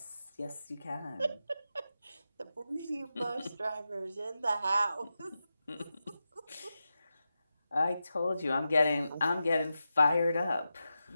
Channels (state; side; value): inverted; both; correlation -0.91